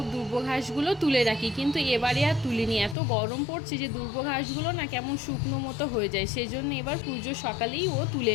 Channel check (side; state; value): right; drops out; at 3.0 s